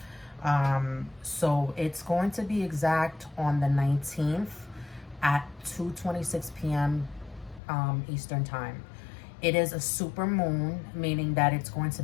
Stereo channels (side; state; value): right; drops out; at 7.6 s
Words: So it's going to be exact on the 19th at 2:26 p.m. Eastern time. It is a super moon, meaning that it's going to